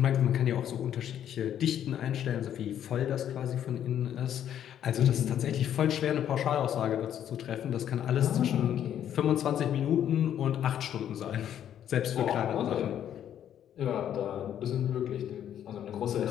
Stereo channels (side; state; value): right; quieter; 10.2 dB